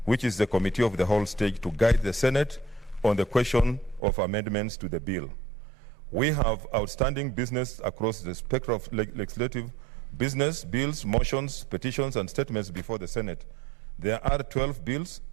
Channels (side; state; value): left; drops out; at 4.0 s